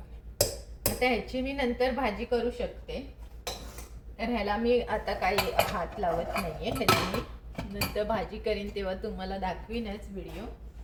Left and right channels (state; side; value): identical; both; correlation 1.00